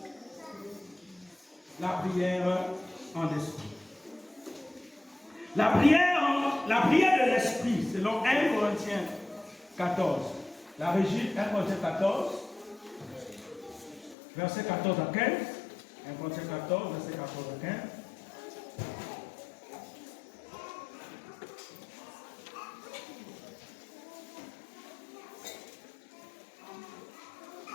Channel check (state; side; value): drops out; right; at 14.2 s